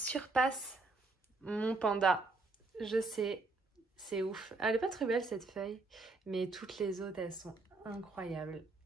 mon panda. Je sais, c'est ouf. Elle est pas très belle cette feuille, mais toutes les autres, elles sont incroyables.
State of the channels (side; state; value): left; quieter; 3.4 dB